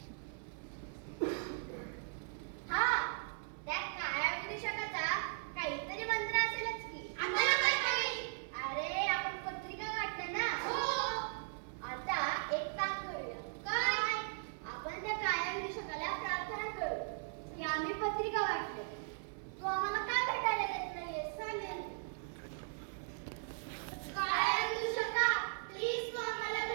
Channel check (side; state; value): left; silent; 52 dB below the other